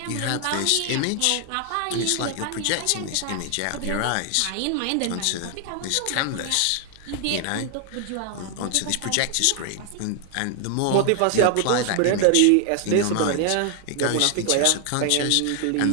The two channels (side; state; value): both; different; correlation 0.00